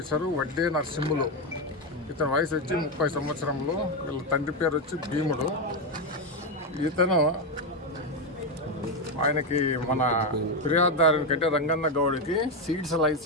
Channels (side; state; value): both; normal; correlation 0.08